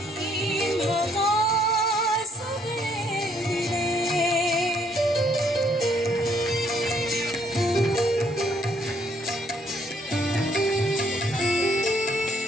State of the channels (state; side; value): normal; both; correlation 0.68